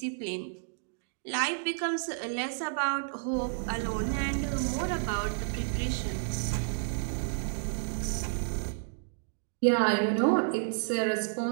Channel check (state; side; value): silent; left; digital silence